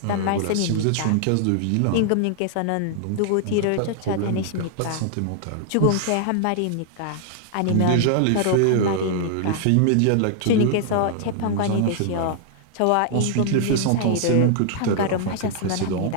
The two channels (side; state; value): both; different; correlation -0.01